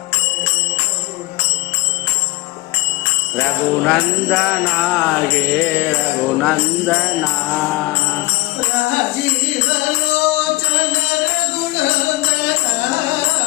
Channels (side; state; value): right; quieter; 20.2 dB